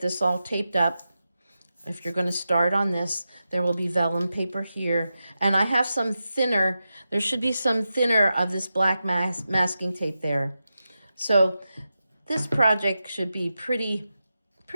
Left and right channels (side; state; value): both; inverted; correlation -0.91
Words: all taped up. If you're going to start on this, there will be vellum paper here. And I have some thinner, there should be some thinner of this black masking tape there. So this project should be pretty